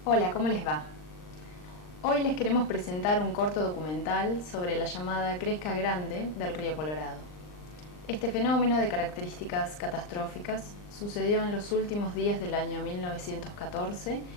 Hola, ¿cómo les va? Hoy les queremos presentar un corto documental sobre la llamada Cresca Grande del río Colorado. Este fenómeno de características catastróficas sucedió en los últimos días del año 1914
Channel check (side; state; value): right; late; 39 ms